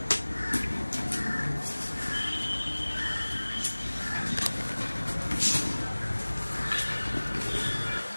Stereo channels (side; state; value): both; inverted; correlation -1.00